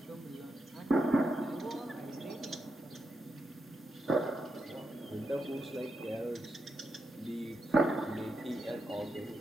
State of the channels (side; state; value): both; normal; correlation 0.85